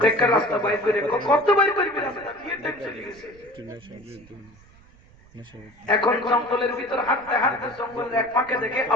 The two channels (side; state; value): right; noise; rumble, 26 dB below the sound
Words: একটা রাস্তা বাইর করে কত বাইর করবি রাস্তা বিয়ে টাইম চলে গেছে এখন জঙ্গলের ভিতর হাঁটতে হাঁটতে জঙ্গলের এক ফাঁকে দেখে